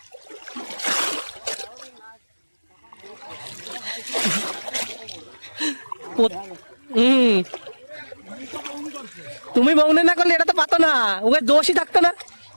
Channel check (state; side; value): inverted; both; correlation -1.00